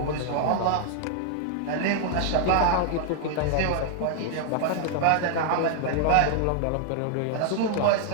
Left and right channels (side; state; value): both; different; correlation 0.00